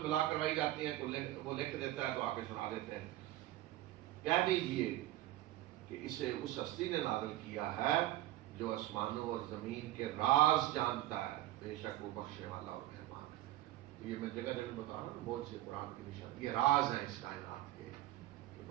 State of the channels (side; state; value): left; quieter; 15.5 dB